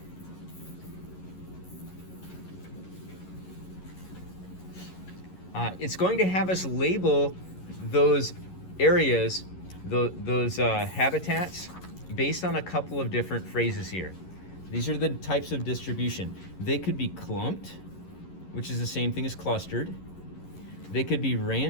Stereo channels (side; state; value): right; late; 11 ms